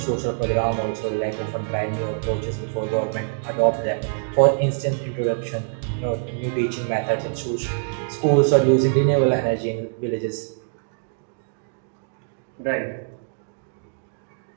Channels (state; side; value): silent; left; digital silence